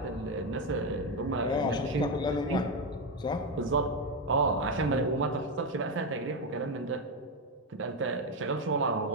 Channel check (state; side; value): normal; both; correlation 0.09